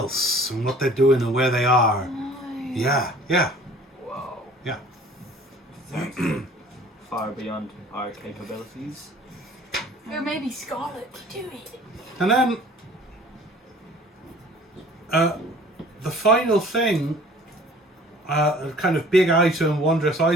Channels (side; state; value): both; normal; correlation 0.50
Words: and what they're doing and where they are. Yeah. Whoa. Yeah. Far beyond our capabilities. Or maybe Scarlet could do it. And then the final thing, a kind of big item, wondrous